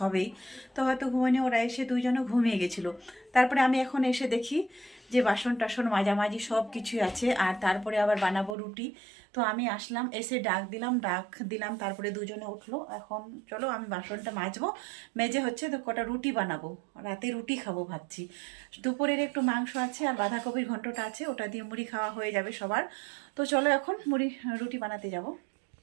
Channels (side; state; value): left; drops out; at 8.6 s